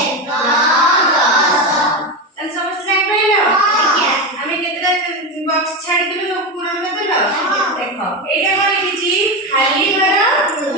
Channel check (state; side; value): normal; both; correlation 0.16